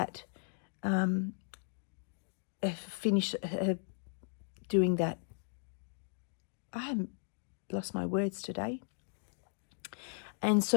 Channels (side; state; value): right; silent; digital silence